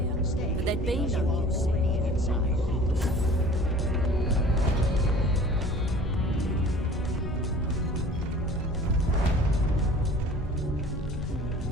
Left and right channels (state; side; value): normal; both; correlation 0.47